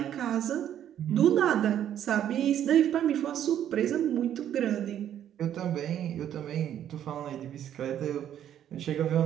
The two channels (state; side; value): quieter; left; 10.5 dB